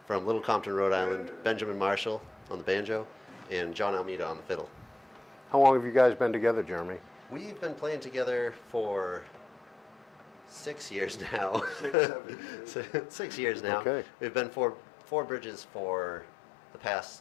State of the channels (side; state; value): right; drops out; at 12.0 s